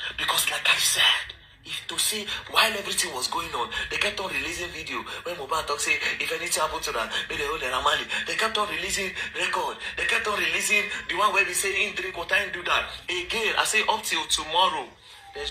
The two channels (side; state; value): both; identical; correlation 1.00